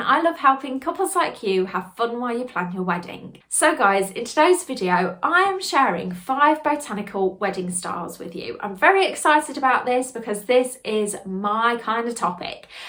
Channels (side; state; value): both; identical; correlation 1.00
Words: I love helping couples like you have fun while you plan your wedding. So guys, in today's video I am sharing 5 botanical wedding styles with you. I'm very excited about this because this is my kind of topic.